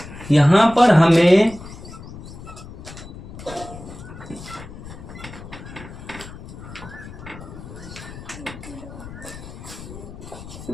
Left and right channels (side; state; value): left; noise; rumble, 14 dB below the sound